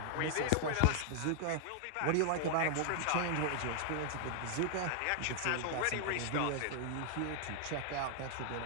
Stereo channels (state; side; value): different; both; correlation 0.00